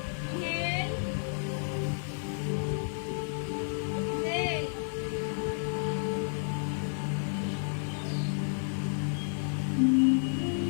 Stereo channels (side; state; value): right; silent; 57 dB below the other